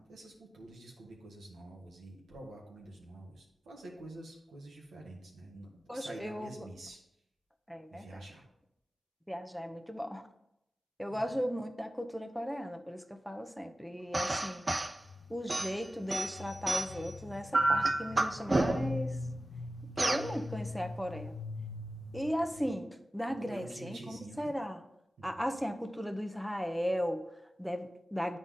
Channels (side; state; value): both; normal; correlation 0.95